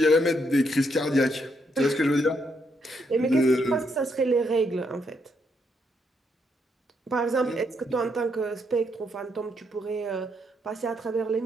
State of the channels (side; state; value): both; normal; correlation 0.76